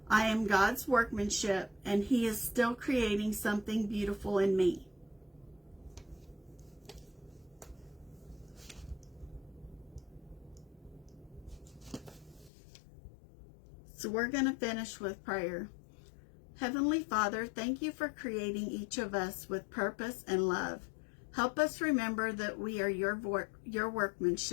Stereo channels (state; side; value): drops out; right; at 12.5 s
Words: I am God's workmanship, and he is still creating something beautiful in me. So we're going to finish with prayer. Heavenly Father, thank you for creating each of us with purpose and love. Help us remember that we are your